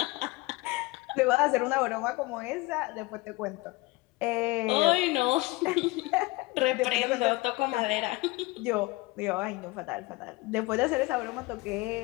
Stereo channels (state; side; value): quieter; right; 22.5 dB